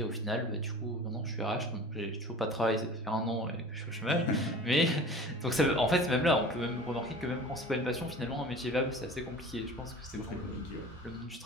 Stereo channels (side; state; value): both; normal; correlation 0.40